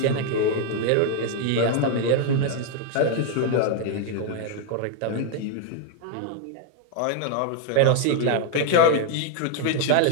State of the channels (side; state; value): both; different; correlation 0.00